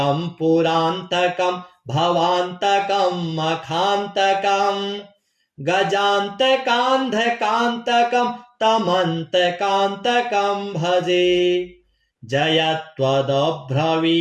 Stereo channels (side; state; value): both; identical; correlation 1.00